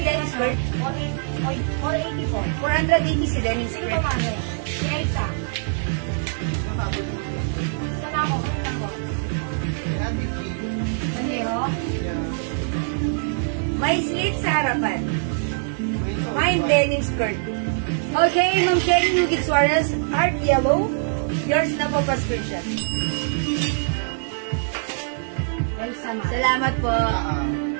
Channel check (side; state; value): left; silent; digital silence